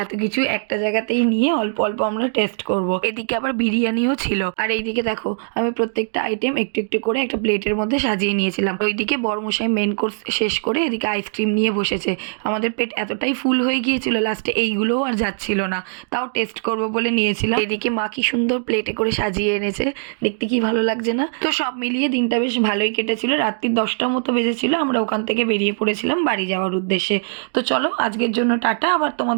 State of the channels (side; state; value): left; silent; digital silence